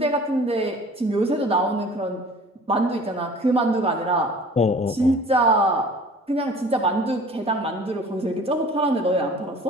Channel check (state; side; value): normal; both; correlation 0.46